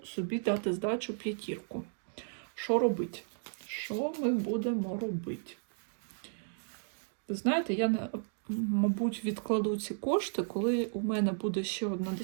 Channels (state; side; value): silent; left; digital silence